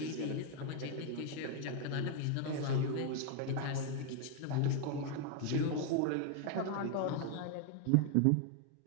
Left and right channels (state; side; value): different; both; correlation 0.00